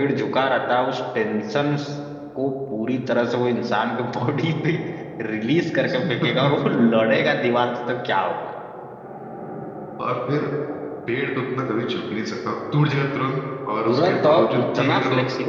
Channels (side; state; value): both; identical; correlation 1.00